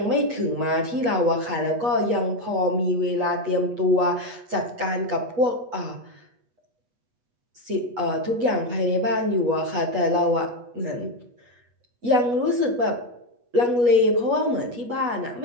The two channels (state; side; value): late; left; 8.3 ms